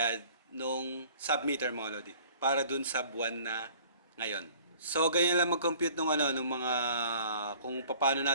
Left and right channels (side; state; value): both; inverted; correlation -0.51